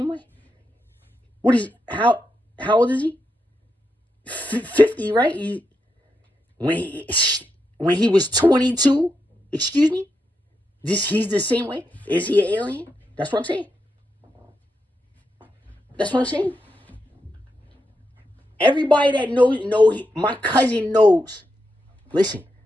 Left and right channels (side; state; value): both; normal; correlation 0.84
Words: way. What is, how old is he? 50, right? When he was 22, excuse me? He's the same way? Is he an alien? That's what I'm saying. That's what I'm saying. Everybody that knows, my cousin knows. Listen.